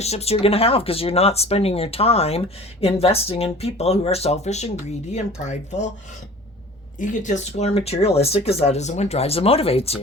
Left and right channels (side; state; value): both; normal; correlation 0.43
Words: you're going to have, because you're not spending your time investing in people who are selfish and greedy and prideful, egotistical, or materialistic, because that isn't what drives and motivates